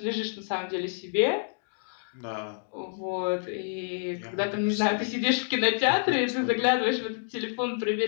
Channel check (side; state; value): right; silent; digital silence